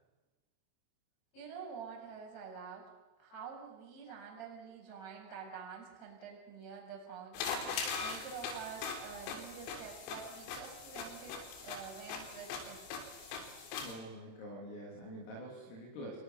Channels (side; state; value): right; late; 26 ms